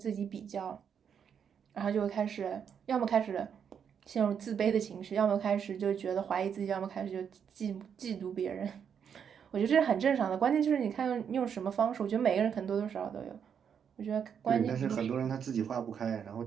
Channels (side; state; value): left; quieter; 7.6 dB